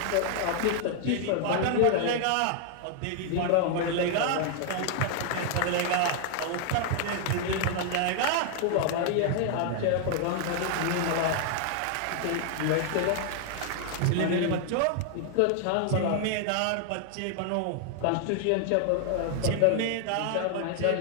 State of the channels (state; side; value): different; both; correlation 0.00